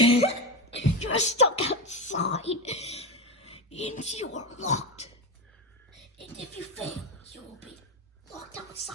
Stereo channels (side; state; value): both; normal; correlation 0.17